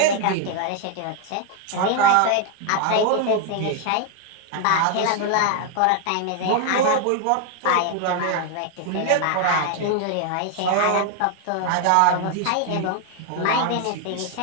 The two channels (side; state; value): both; different; correlation 0.01